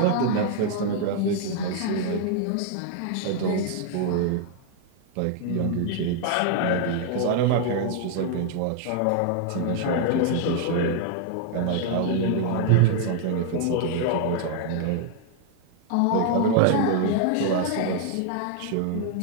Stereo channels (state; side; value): different; both; correlation 0.00